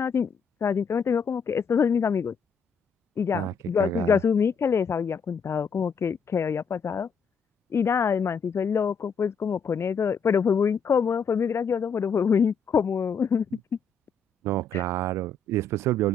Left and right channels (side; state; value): right; quieter; 4.5 dB